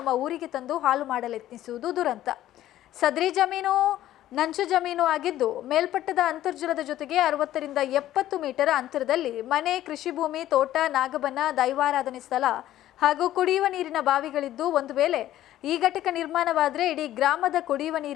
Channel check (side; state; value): right; quieter; 13.4 dB